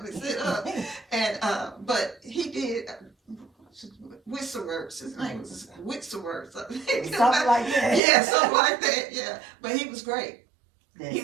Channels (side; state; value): left; drops out; at 8.0 s